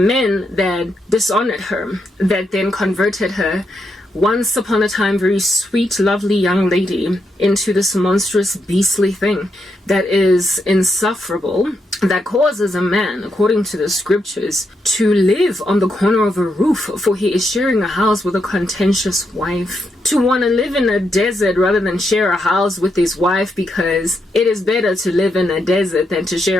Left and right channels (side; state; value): both; normal; correlation 0.81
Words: that dishonored her, that then converted her, once upon a time very sweet, lovely young lady, into this monstrous, beastly thing that is insufferable, that causes a man, according to the scriptures, to live on the corner of a roof, for he is sharing a house with a contentious wife. To want to live in a desert rather than share a house with his wife, because it is better to live in a desert than to